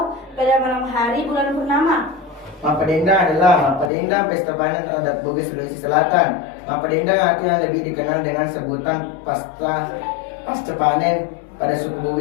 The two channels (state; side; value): drops out; right; at 3.9 s